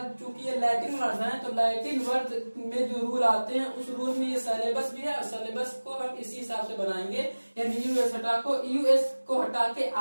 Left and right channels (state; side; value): inverted; both; correlation -1.00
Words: चूंकि ये लैटिन वर्ड है तो लैटिन वर्ड में जो रूल आते हैं उस रूल में ये सिलेबस भी है, और सिलेबस को हम इसी हिसाब से बनाएंगे, यानी यूएस को हटा के